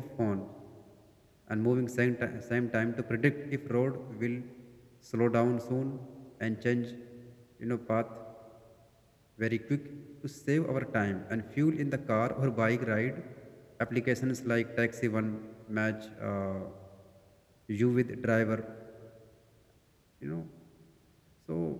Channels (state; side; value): identical; both; correlation 1.00